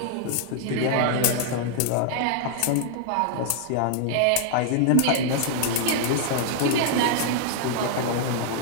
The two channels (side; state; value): both; different; correlation 0.00